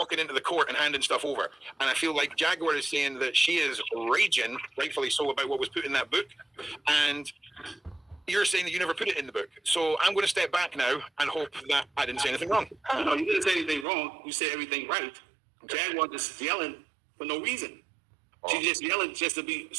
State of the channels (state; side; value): drops out; left; at 13.9 s